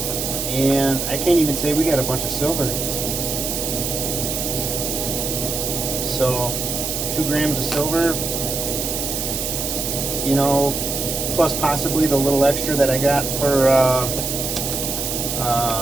and I can't even say we got a bunch of silver. So 2 grams of silver, you know, plus possibly the little extra that I got for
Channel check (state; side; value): noise; right; hiss, 2 dB below the sound